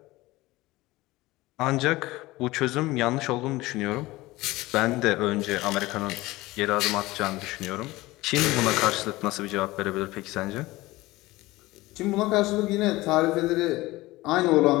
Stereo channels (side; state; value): right; quieter; 19.4 dB